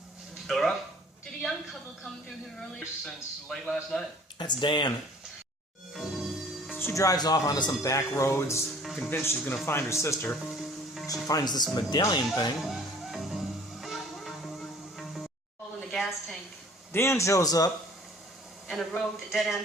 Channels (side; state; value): both; normal; correlation 0.52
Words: Fill her up? Did a young couple come through here earlier? Since late last night. That's Dan. She drives off onto some back roads, convinced she's going to find her sister. She finds this medallion thing. Hole in the gas tank. Dan shows up And a road that dead